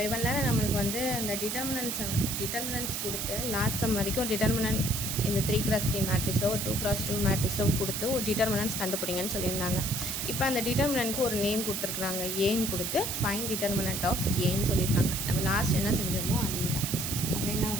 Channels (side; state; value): right; noise; hiss, 2 dB below the sound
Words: இவ்வளோ நேரம் நம்மளுக்கு வந்து அந்த டிட்டர்மினன்ட்ஸ் கொடுத்து லாஸ்ட் சம் வரைக்கும் ஒரு டிட்டர்மினன்ட் இந்த 3x3 மேட்ரிக்ஸோ ஒரு 2x2 மேட்ரிக்ஸோ கொடுத்து ஒரு டிட்டர்மினன்ட்ஸ் கண்டுபிடிங்கன்னு சொல்லியிருந்தாங்க. இப்போ அந்த டிட்டர்மினன்ட்க்கு ஒரு நேம் கொடுத்துருக்குறாங்க, ஏன்னு கொடுத்து ஃபைண்ட் டிட்டர்மினன்ட் ஆஃப் ஏன்னு சொல்லியிருக்காங்க. நம்ம லாஸ்ட் என்ன செஞ்சோமோ அதே தான். அப்போ என்ன